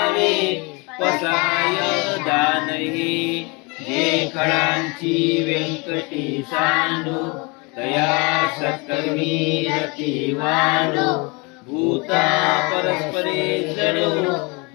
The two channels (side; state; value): right; quieter; 29.0 dB